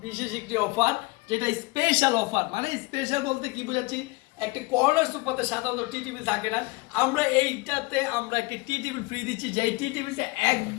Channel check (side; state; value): right; quieter; 24.7 dB